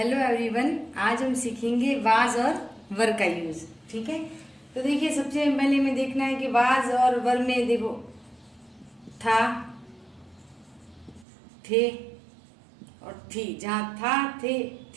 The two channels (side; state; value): left; drops out; at 11.2 s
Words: everyone, आज हम सीखेंगे वाज और वर का यूज। ठीक है, तो देखिए सबसे पहले हमें देखना है कि वाज और वर में देखो था, थे और थी। जहाँ था, थे,